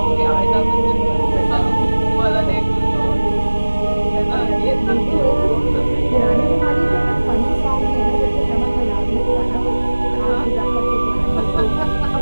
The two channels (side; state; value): both; inverted; correlation -1.00